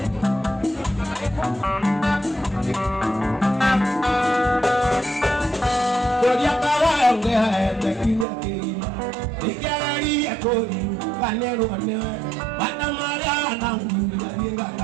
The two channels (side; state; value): left; drops out; at 8.2 s